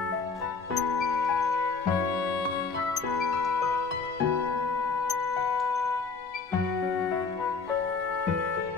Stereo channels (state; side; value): quieter; right; 4.7 dB